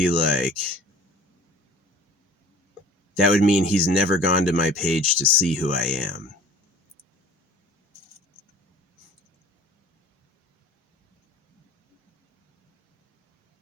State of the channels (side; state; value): both; normal; correlation 0.46